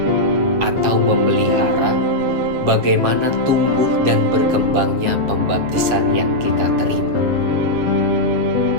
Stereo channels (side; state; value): left; late; 8.0 ms